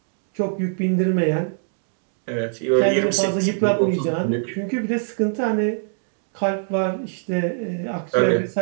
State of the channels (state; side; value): silent; left; digital silence